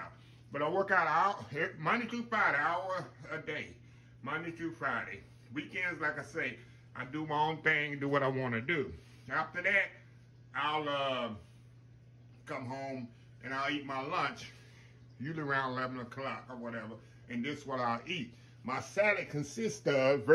But I work out Monday through Friday, hour a day. Monday through Friday. Weekends, like I say, I do my own thing, do what I want to do. After that, I'll come home and I'll eat my lunch, usually around 11 o'clock or whatever, and this is what I'll eat. My salad consists of,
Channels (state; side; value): identical; both; correlation 1.00